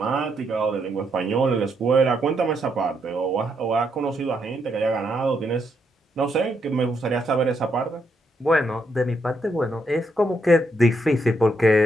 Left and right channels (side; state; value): both; normal; correlation 0.77